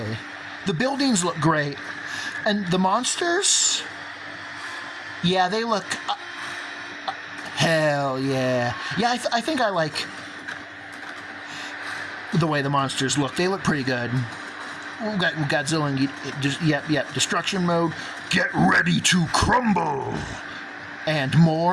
The buildings look great. And the monsters? Yeah, they look... hell yeah. Yeah, I think I like the way the monsters look. They look pretty good. We've got Godzilla and... Yep. Destruction mode. Get ready to crumble. And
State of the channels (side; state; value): both; identical; correlation 1.00